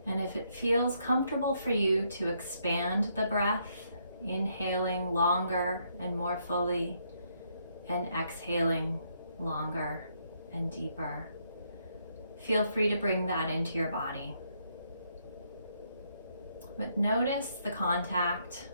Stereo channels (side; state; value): both; inverted; correlation -0.74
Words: And if it feels comfortable for you to expand the breath, inhaling longer and more fully and exhaling longer and deeper, feel free to bring that into your body. But notice the contact